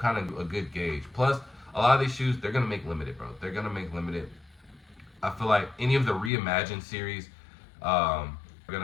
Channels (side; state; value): right; drops out; at 6.3 s